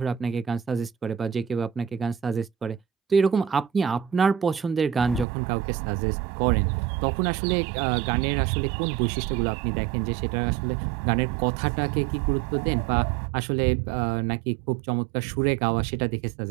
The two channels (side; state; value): left; drops out; at 5.2 s